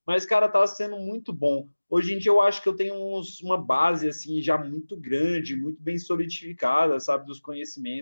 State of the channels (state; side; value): inverted; both; correlation -1.00